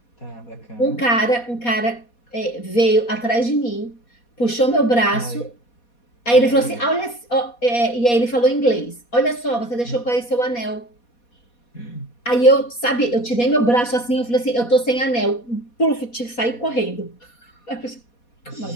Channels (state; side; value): late; right; 4.2 ms